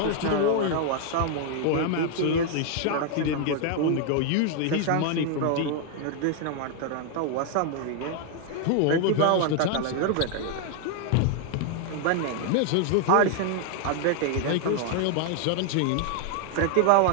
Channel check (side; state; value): both; different; correlation 0.00